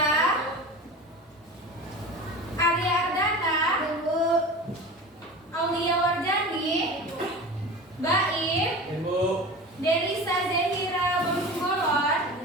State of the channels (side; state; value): both; normal; correlation 0.33